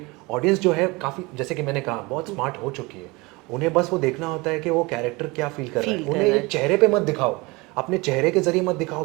ऑडियंस जो है काफ़ी, जैसे कि मैंने कहा, बहुत स्मार्ट हो चुकी है। उन्हें बस वो देखना होता है कि वो कैरेक्टर क्या फील कर रहा है। फील कर उन्हें रहा ये है। चेहरे पे मत दिखाओ, अपने चेहरे के जरिए मत दिखाओ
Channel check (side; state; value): left; quieter; 24.5 dB